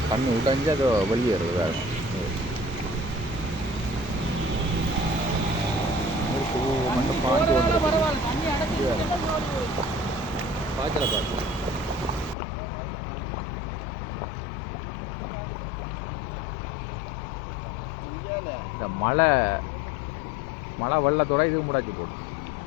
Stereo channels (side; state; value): right; drops out; at 12.4 s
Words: தண்ணி உடைஞ்சு அது வெளியேறுது வேறு மட்டும் பாஞ்சு பாய்ச்சலை பார்த்து இந்த மழை வெள்ளத்தோட இது முடாச்சு போட்டு